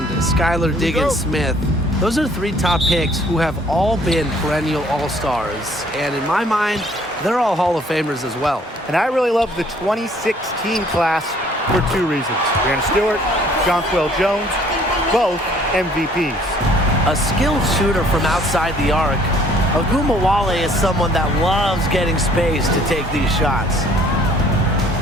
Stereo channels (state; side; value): normal; both; correlation 0.58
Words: Skylar Diggins-Smith. Those are 3 top picks who have all been perennial all-stars. And in my mind, they're all Hall of Famers as well. And I really love the 2016 class for 2 reasons. Brianna Stewart, Jonquel Jones, both MVPs. A skilled shooter from outside the arc, Ogumawale is someone that loves getting space to take these shots.